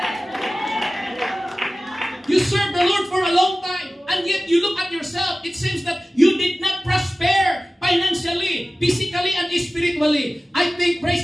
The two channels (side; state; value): both; normal; correlation 0.96